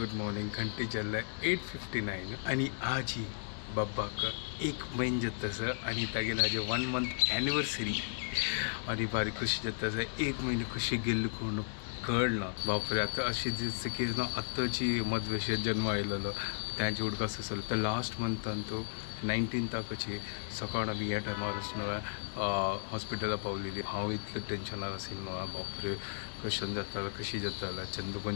मॉर्निंग घंटे चल्लाय 8:59 आणि आज ही बब्बाक एक महिन जतस आणि तागेला आज 1 month एनिवर्सरी आणि बारी खुशी जतस एक महिने खुशी गेल्ली कोण कळना बापरे आता अशी दिसतं की ना आत्ताची मधवेशात जन्म आयलेलो त्यांची उडकास असेल तर लास्ट मंथान तो 19 ताकची सकाळ आम्ही ह्या टायमार न्हय हॉस्पिटला पावलेली हांव इतलें टेन्शनार आशिल्लो न्हय बापरे कशें जातालें कशी जातालें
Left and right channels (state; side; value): silent; right; digital silence